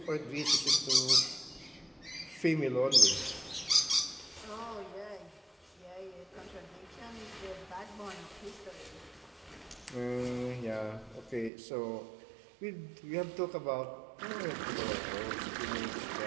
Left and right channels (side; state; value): left; drops out; at 11.5 s